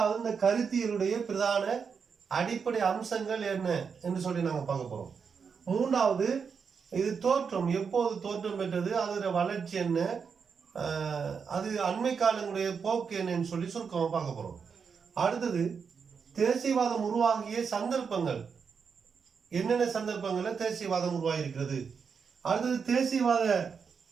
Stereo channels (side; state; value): left; quieter; 6.1 dB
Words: இந்த கருத்தியலுடைய பிரதான அடிப்படை அம்சங்கள் என்ன என்று சொல்லி நாங்கள் பார்க்க போகிறோம். மூன்றாவது இது தோற்றம், எப்போது தோற்றம் பெற்றது, அதோட வளர்ச்சி என்ன, அது அண்மை காலங்களுடைய போக்கு என்னன்னு சொல்லி சுருக்கமாக பார்க்க போகிறோம். அடுத்தது தேசியவாதம் உருவாகிய சந்தர்ப்பங்கள், என்னென்ன சந்தர்ப்பங்களில் தேசியவாதம் உருவாகி இருக்கிறது. அடுத்தது